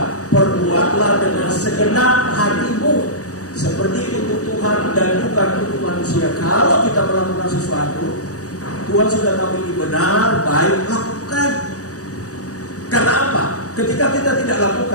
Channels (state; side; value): late; right; 0.66 ms